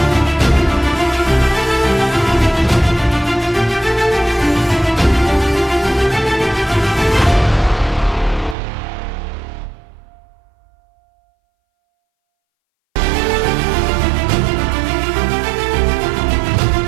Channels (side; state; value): left; drops out; at 8.6 s